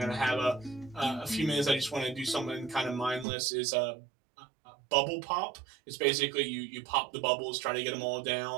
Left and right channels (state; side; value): drops out; left; at 3.2 s